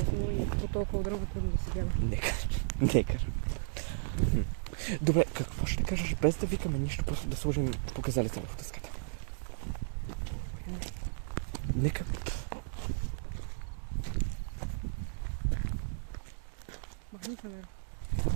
и по толкова дърво трудно да се гледа. Негър. Добре, какво ще кажеш, без да викаме нищо, просто да сложим показалите върху дъската? Нека. Махни се, не.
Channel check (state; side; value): silent; left; digital silence